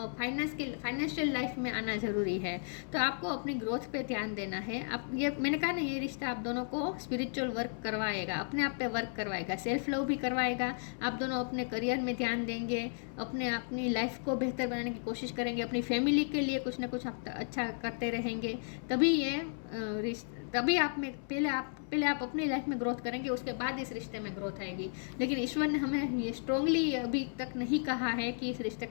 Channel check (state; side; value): silent; right; 55 dB below the other